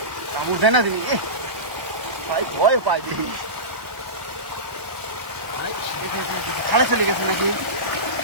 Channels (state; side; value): late; left; 1.2 ms